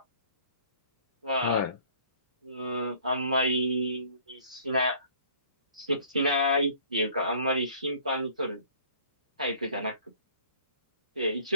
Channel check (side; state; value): both; inverted; correlation -0.54